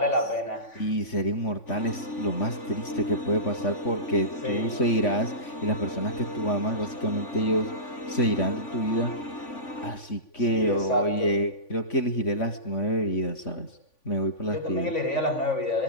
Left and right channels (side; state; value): right; late; 3.5 ms